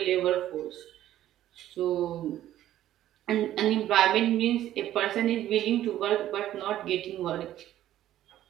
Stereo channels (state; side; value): quieter; left; 12.8 dB